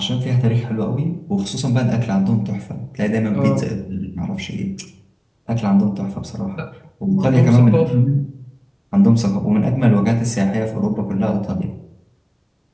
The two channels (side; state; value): both; identical; correlation 1.00